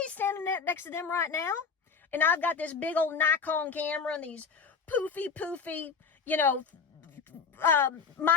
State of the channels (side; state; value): right; quieter; 5.6 dB